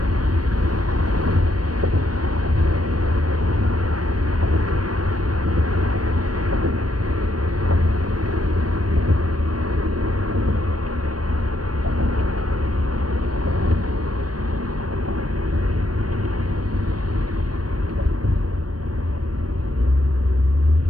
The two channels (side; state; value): left; late; 0.69 ms